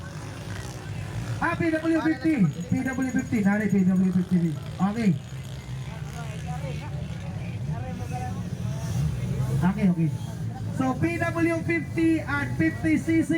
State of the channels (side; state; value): both; identical; correlation 1.00